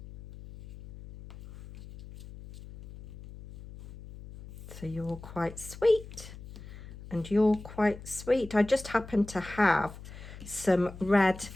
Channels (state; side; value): noise; left; hum, 15 dB below the sound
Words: So you're quite sweet and you're quite sweet. I just happen to have some red